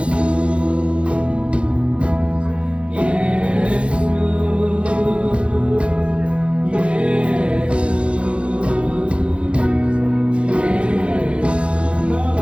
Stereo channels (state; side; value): late; left; 0.059 ms